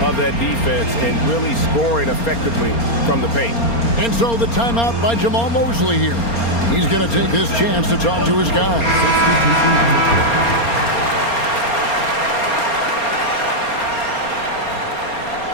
of that defense and really scoring effectively from the paint. And so the timeout by Jamal Mosley here. He's going to take this chance to talk to his guys.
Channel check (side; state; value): right; late; 4.3 ms